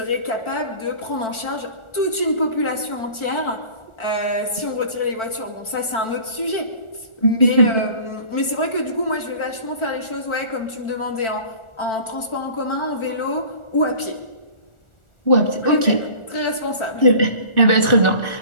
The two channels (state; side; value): late; right; 1.4 ms